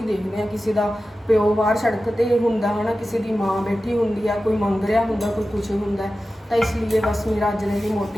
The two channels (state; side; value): normal; both; correlation 0.94